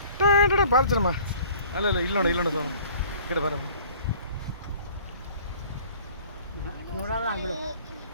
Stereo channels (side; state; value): both; inverted; correlation -0.52